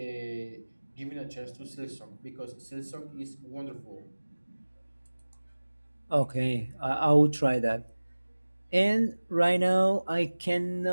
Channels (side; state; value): both; inverted; correlation -1.00